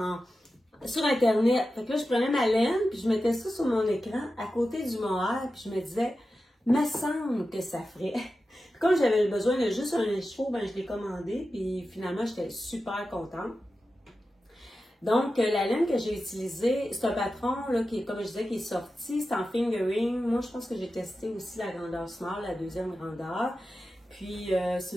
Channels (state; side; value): normal; both; correlation 0.92